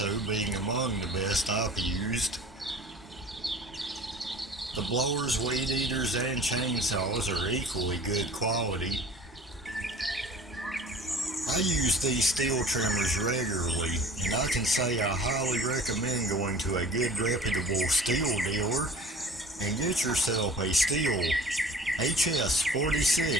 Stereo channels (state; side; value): normal; both; correlation 0.45